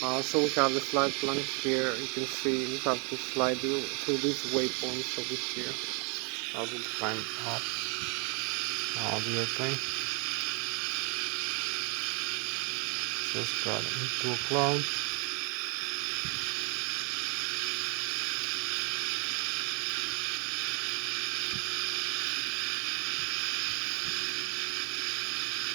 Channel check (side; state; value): left; quieter; 35.0 dB